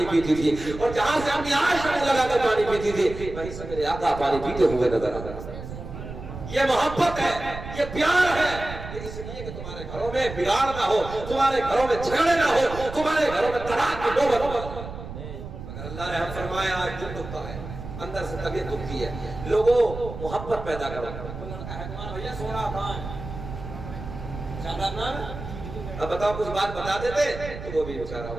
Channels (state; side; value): noise; right; rumble, 10 dB below the sound